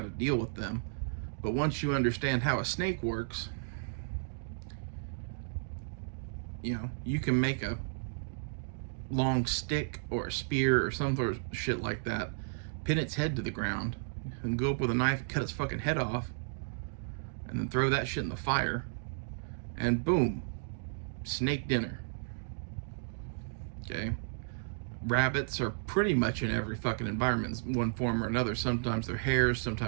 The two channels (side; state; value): left; silent; digital silence